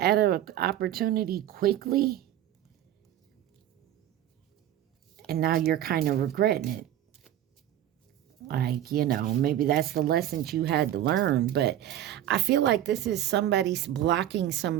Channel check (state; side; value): quieter; left; 12.0 dB